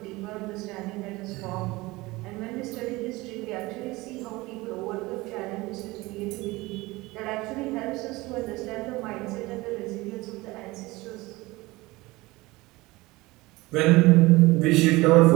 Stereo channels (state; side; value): quieter; left; 21.2 dB